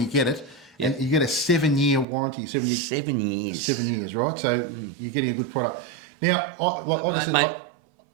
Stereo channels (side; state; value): left; drops out; at 2.1 s